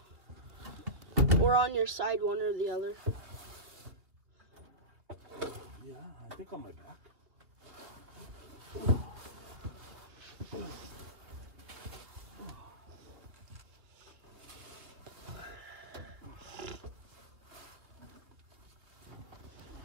Or on your side, one or the other. Yeah, I think on my back.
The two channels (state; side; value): late; left; 2.6 ms